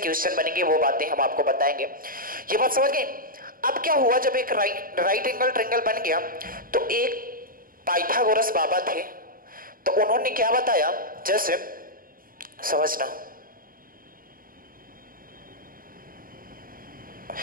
क्वेश्चन बनेंगे वो बातें हम आपको बताएंगे। ये बात समझ गए? अब क्या हुआ, जब एक राइट एंगल ट्रायंगल बन गया तो एक पाइथागोरस बाबा थे, तो उन्होंने क्या बताया, जैसे समझना,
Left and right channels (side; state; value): left; late; 0.41 ms